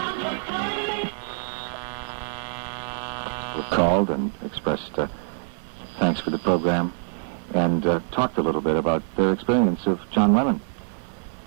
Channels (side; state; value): left; silent; digital silence